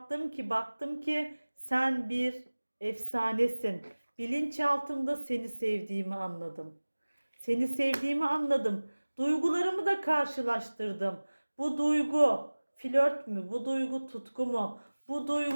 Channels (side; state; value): both; inverted; correlation -1.00